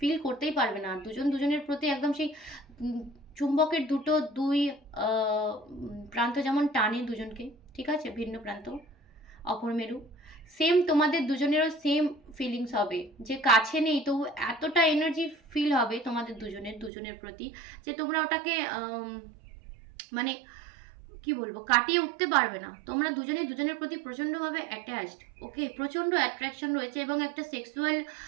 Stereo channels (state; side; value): drops out; left; at 16.9 s